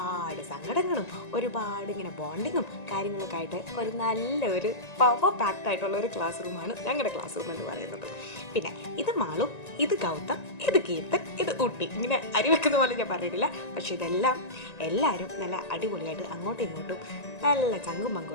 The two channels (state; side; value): late; right; 1.9 ms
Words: സങ്കടങ്ങളും ഒരുപാട് ഇങ്ങനെ ബോണ്ടിങ്ങും കാര്യങ്ങളൊക്കെ ആയിട്ട് ഒരു നല്ലൊരു പവർ പാക്ഡ് ആയിട്ടുള്ള ഒരു ക്ലാസ് റൂമാണ് ഞങ്ങളുടെ ക്ലാസ് റൂം എന്ന് പറയുന്നത്. പിന്നെ ഇത് മാളു, ഇത് ഗൗതം, ഇത് കീർത്തൻ, ഇത് ഊട്ടി. ഇങ്ങനെ അരി വെക്കുന്ന പോലെ ഞാൻ പറഞ്ഞിട്ടില്ല. പക്ഷെ ഇതെല്ലാം എല്ലാവരും നല്ല അടിപൊളിയായിട്ട് അങ്ങോട്ടും ഇങ്ങോട്ടും നല്ല ചങ്കും